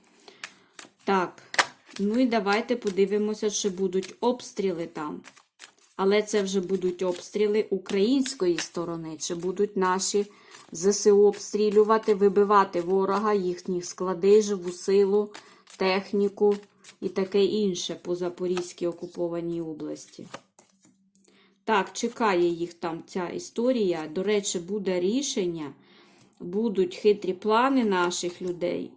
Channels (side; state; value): both; identical; correlation 1.00